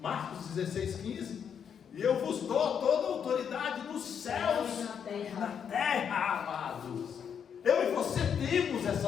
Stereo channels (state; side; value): quieter; right; 7.7 dB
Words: Marcos 16:15. E eu vos dou toda a autoridade nos céus e na terra, amados. Eu e você temos essa